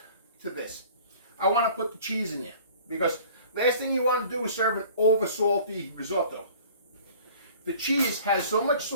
to this, I want to put the cheese in there. Because last thing you want to do is serve an over salty risotto. The cheese has so much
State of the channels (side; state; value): both; inverted; correlation -0.48